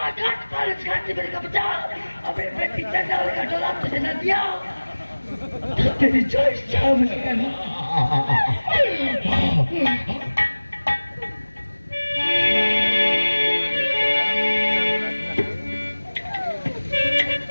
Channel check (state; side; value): inverted; both; correlation -1.00